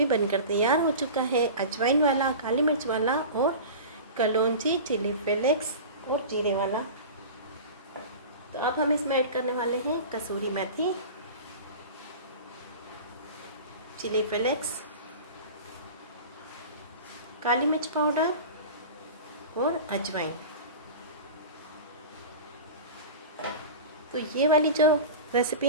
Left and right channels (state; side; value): inverted; both; correlation -0.33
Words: बनकर तैयार हो चुका है, अजवाइन वाला, काली मिर्च वाला और कलौंजी, चिली फ्लेक्स और जीरे वाला। तो अब हम इसमें ऐड करने वाले हैं कसूरी मेथी, चिली फ्लेक्स, काली मिर्च पाउडर और अजवाइन। तो ये वाली जो रेसिपी